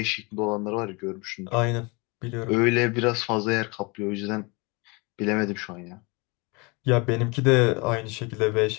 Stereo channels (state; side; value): quieter; right; 28.3 dB